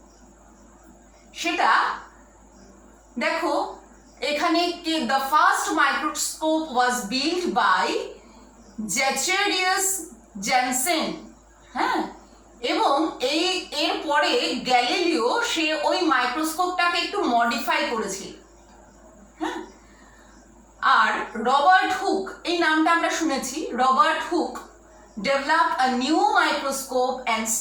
সেটা দেখো এখানে, the first microscope was built by Zacharias Janssen। হ্যাঁ, এবং এরপরে গ্যালিলিও সে ওই মাইক্রোস্কোপটাকে একটু মডিফাই করেছিল। হ্যাঁ, আর রবার্ট হুক, এই নামটা আমরা শুনেছি, Robert Hooke developed a new microscope and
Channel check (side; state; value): both; identical; correlation 1.00